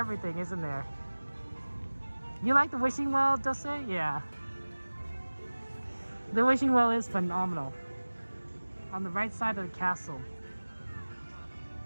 isn't there? You like the wishing well, Dulce? Yeah. The wishing well is phenomenal. On the right side of the castle.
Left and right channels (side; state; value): both; inverted; correlation -1.00